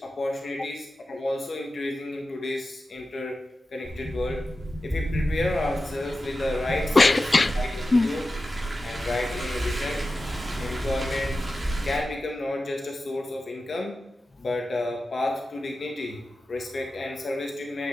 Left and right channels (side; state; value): both; normal; correlation 0.93